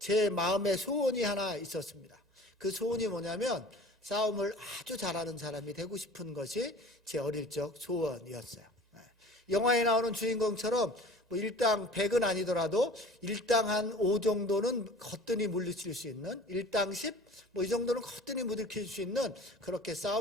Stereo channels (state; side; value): normal; both; correlation 0.43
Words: 마음의 소원이 하나 있었습니다. 그 소원이 뭐냐면 싸움을 아주 잘하는 사람이 되고 싶은 것이 제 어릴 적 소원이었어요. 영화에 나오는 주인공처럼 뭐 일당 100은 아니더라도 일당 한 5 정도는 거뜬히 물리칠 수 있는, 일당 10, 뭐 이 정도는 거뜬히 물리칠 수 있는 그렇게